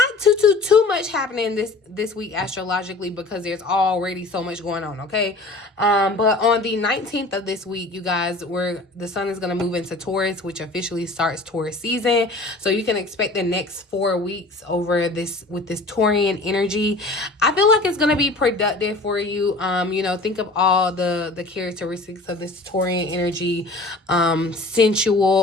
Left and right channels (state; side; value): quieter; right; 3.0 dB